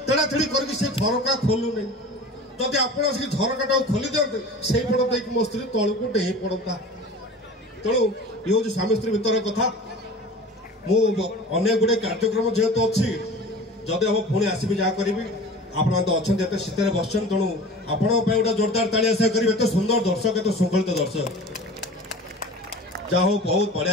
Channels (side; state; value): both; normal; correlation 0.38